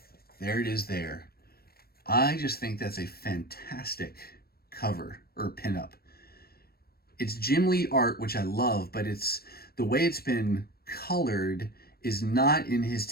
there it is there. I just think that's a fantastic cover or pinup. It's Jim Lee art, which I love, but it's the way it's been colored is not in his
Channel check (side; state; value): right; late; 0.45 ms